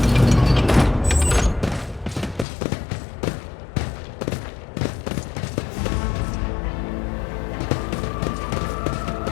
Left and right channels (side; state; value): right; drops out; at 2.5 s